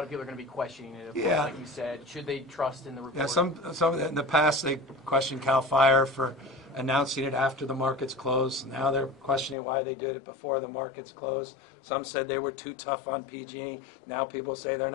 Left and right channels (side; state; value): right; drops out; at 9.6 s